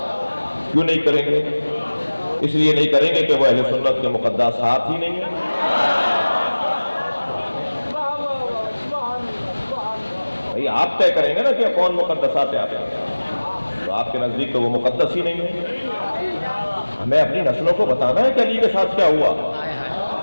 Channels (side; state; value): both; inverted; correlation -1.00